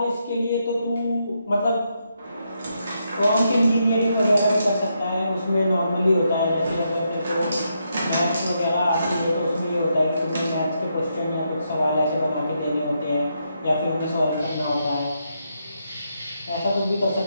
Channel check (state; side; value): inverted; both; correlation -0.81